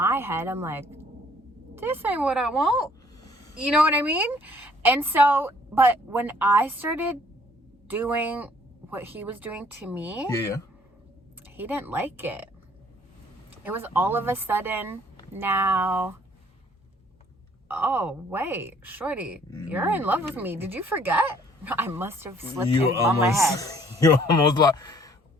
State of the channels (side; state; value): both; normal; correlation 0.60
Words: head, I'm like, this ain't what I want. You know what I mean? And so, but when I started doing what he was doing to me, yeah, he didn't like it. It was all of a sudden now, oh, wait, shorty, you're in love with me. Did you forget? I must have slipped on my head. You almost like,